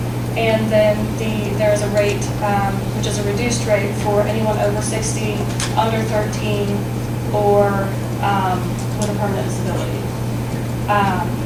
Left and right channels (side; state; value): both; identical; correlation 1.00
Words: And then there's a rate which is a reduced rate for anyone over 60, under 13, or with a permanent disability.